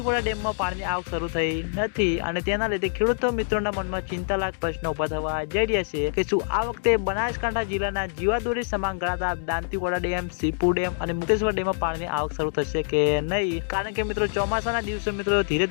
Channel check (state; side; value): silent; right; digital silence